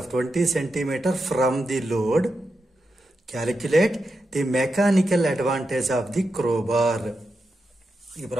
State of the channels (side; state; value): both; normal; correlation 0.88